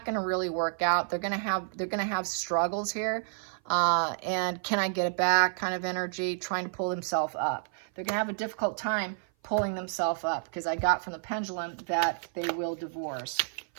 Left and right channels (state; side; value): silent; left; 56 dB below the other